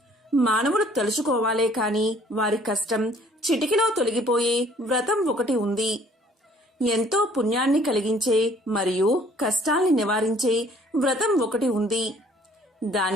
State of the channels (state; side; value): normal; both; correlation 0.58